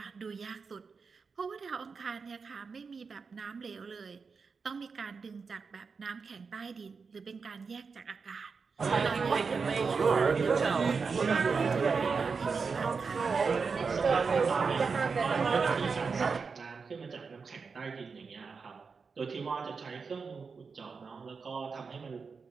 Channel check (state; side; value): quieter; left; 5.1 dB